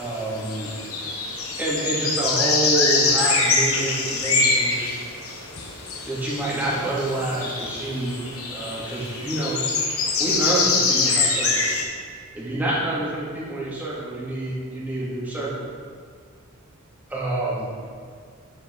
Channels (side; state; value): both; normal; correlation 0.11